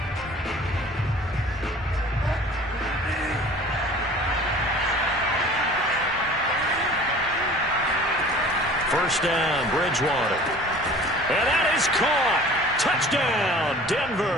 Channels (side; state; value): both; normal; correlation 0.46